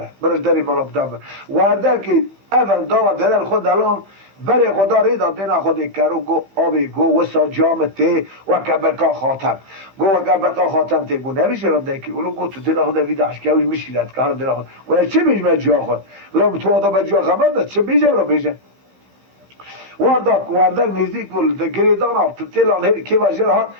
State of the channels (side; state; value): left; late; 15 ms